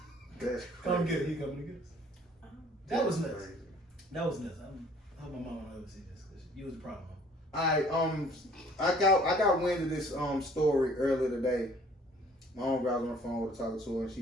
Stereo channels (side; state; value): both; normal; correlation 0.56